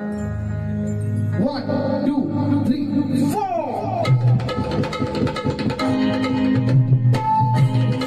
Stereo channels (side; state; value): both; identical; correlation 1.00